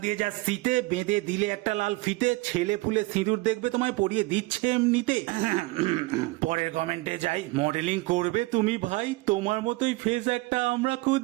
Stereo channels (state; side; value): quieter; left; 22.4 dB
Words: দিয়ে যা শীতে বেঁধে দিলে একটা লাল ফিতে, ছেলে ফুলে সিঁদুর দেখবে তোমায় পরিয়ে দিচ্ছে এমনিতে। পরের কমেন্টে যাই, মডেলিং করবে তুমি ভাই, তোমার মতোই ফেস একটা আমরা